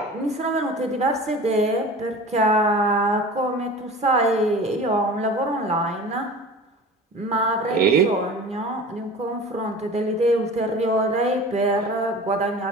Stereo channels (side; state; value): both; normal; correlation 0.38